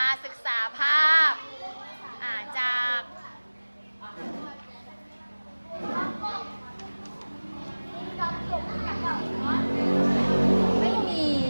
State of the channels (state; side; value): inverted; both; correlation -1.00